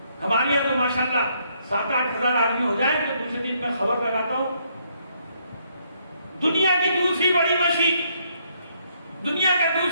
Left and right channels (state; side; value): inverted; both; correlation -0.71